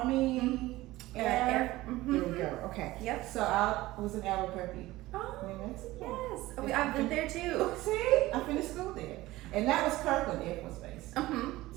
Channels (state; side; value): quieter; left; 18.0 dB